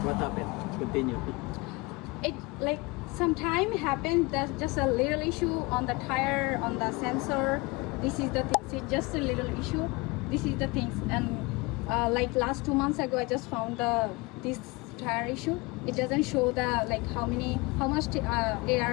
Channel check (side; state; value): right; quieter; 25.4 dB